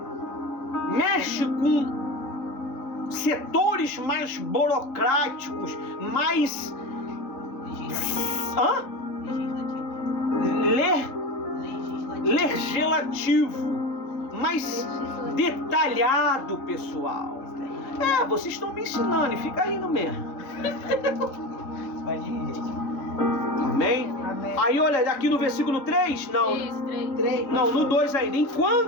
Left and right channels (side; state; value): right; late; 3.5 ms